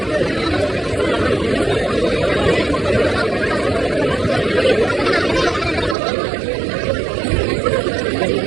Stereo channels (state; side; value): drops out; left; at 6.0 s